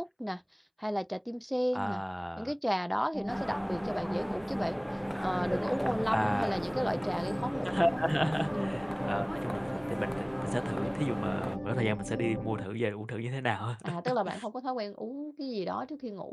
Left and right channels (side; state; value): both; identical; correlation 1.00